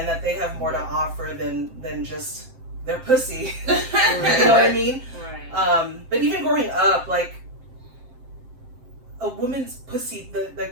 that they have more to offer than just their pussy. You Right. know what I mean? Right. But even growing up, like a woman's pussy, the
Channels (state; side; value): late; left; 7.7 ms